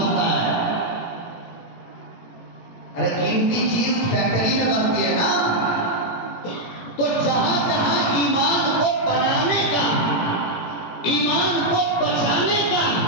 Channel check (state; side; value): late; right; 18 ms